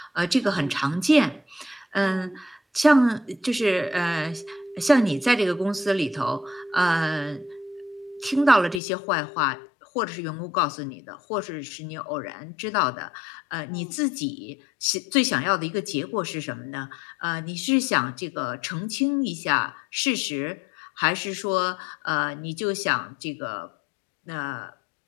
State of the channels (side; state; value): right; drops out; at 8.8 s